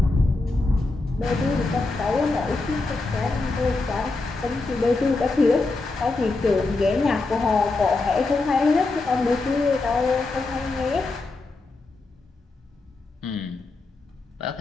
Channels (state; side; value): quieter; right; 3.4 dB